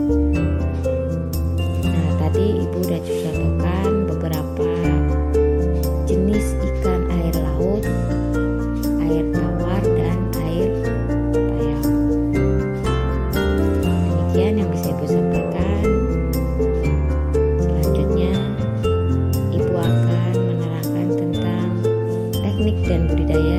Nah, tadi Ibu udah contohkan beberapa jenis ikan air laut, air tawar, dan air payau. Demikian yang bisa Ibu sampaikan. Selanjutnya, Ibu akan menerangkan tentang teknik dan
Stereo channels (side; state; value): both; identical; correlation 1.00